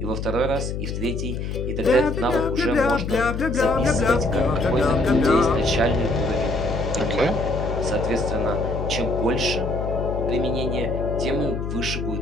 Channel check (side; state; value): left; noise; hum, 4 dB below the sound